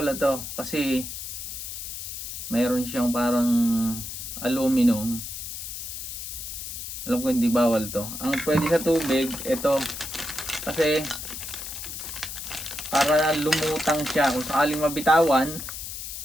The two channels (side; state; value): left; noise; hiss, 8 dB below the sound